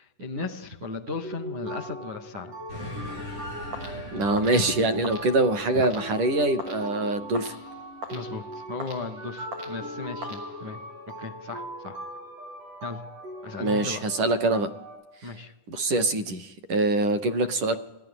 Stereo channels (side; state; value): left; late; 10 ms